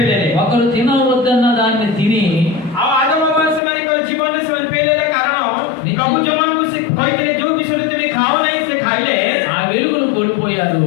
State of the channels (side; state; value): right; drops out; at 3.6 s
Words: ହେଲେ। ఒకరు తినవద్దన్న దాన్ని తిని ଆଉ ଆଦମ ହବା ସେମାନଙ୍କର ଜୀବନରେ ସେମାନେ ଫେଲ୍ ହେଲେ କାରଣ ପ୍ରଭୁ ଯୋଉମାନଙ୍କୁ ସେ କହିଥିଲେ ଯୋଉ ବିଷୟରେ ତୁମେ ଖାଅ ନାହିଁ ସେ ଖାଇଲେ। ఆ వెలుగును కోల్పోయారు.